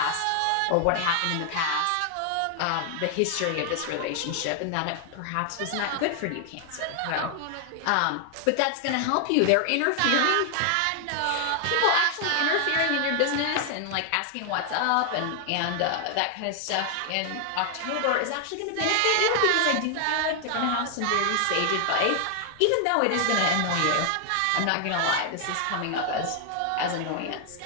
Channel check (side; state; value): both; different; correlation 0.00